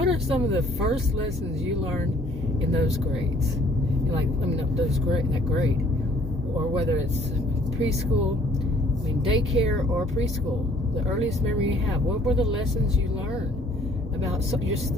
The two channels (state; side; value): normal; both; correlation 0.58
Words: are some of the first lessons you learned in those grades? That grade. Or whether it's preschool, daycare or preschool. The earliest memory you have. What were the lessons you learned about